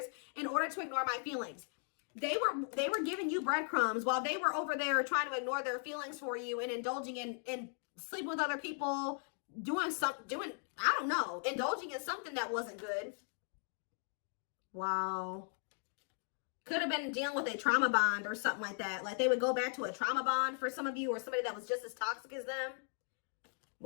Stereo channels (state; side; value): silent; right; 52 dB below the other